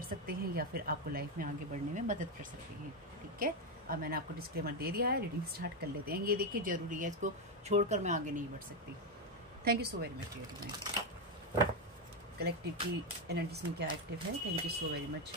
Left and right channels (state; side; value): normal; both; correlation 0.07